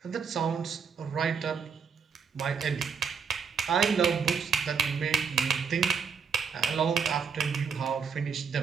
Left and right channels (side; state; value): left; quieter; 6.3 dB